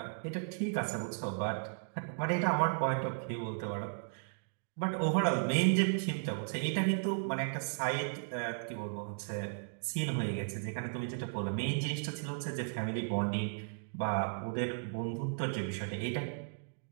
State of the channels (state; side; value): silent; left; digital silence